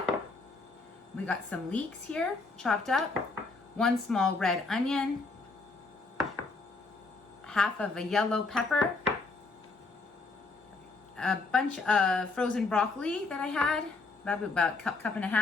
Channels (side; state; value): right; quieter; 3.8 dB